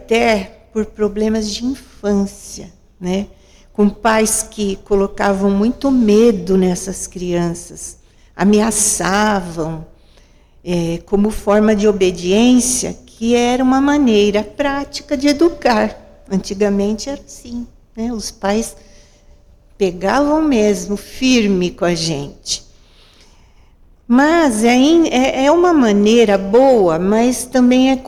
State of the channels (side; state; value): both; identical; correlation 1.00